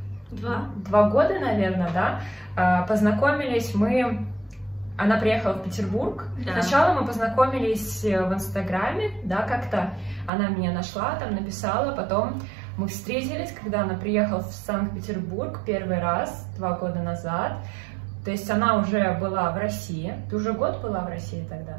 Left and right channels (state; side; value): drops out; left; at 10.3 s